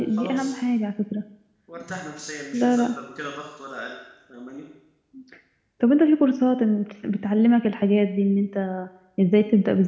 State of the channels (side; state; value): both; identical; correlation 1.00